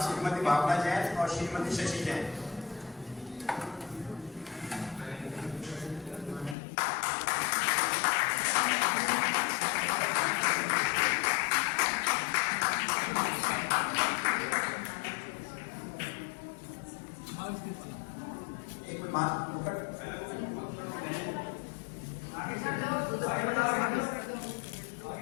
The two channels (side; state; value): right; drops out; at 6.6 s